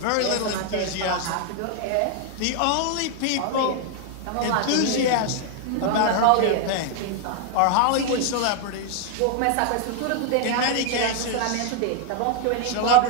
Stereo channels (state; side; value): different; both; correlation 0.00